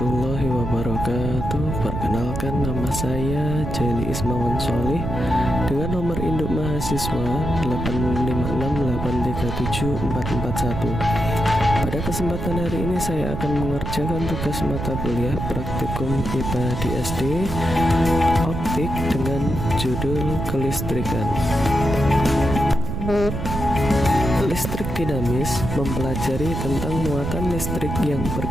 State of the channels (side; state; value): right; noise; rumble, 4 dB below the sound